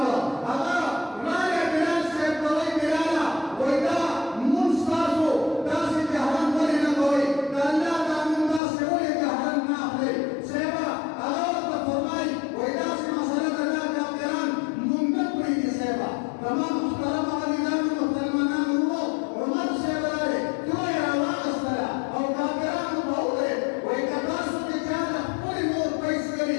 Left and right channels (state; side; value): drops out; right; at 8.6 s